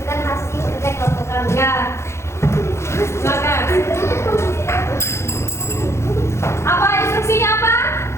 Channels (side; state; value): right; late; 0.13 ms